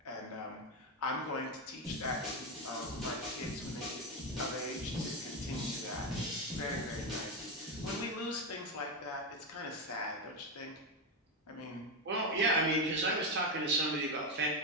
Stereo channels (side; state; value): both; normal; correlation 0.10